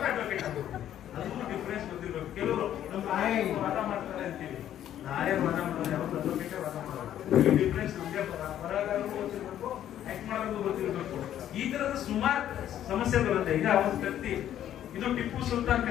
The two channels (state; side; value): quieter; right; 11.2 dB